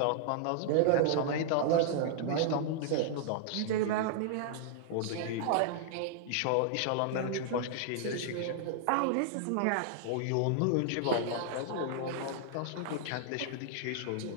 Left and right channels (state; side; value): different; both; correlation 0.00